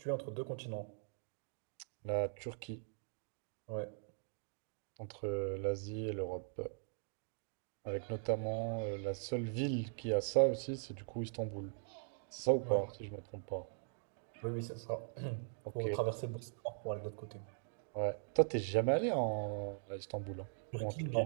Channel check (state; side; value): silent; left; digital silence